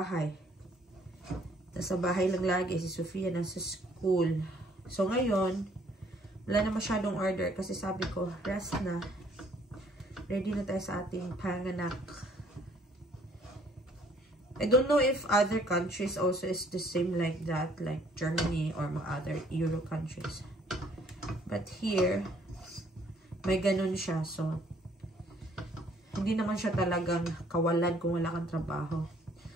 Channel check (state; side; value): normal; both; correlation 0.62